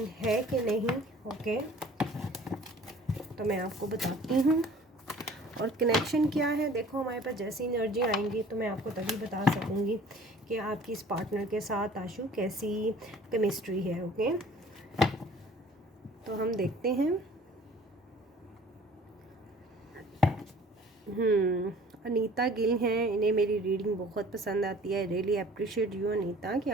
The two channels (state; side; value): normal; both; correlation 0.49